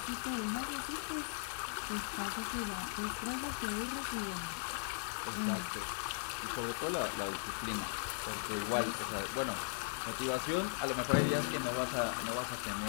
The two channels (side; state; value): right; silent; digital silence